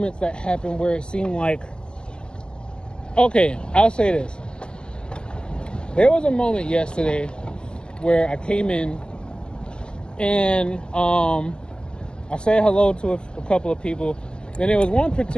that happen where it seemed like, okay, I'll say this. There was a moment yesterday where I came in and I said hello to a couple of people. Then there was one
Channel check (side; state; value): right; late; 0.048 ms